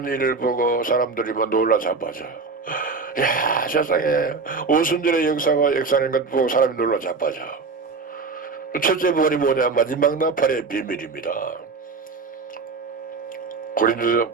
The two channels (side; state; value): left; quieter; 4.4 dB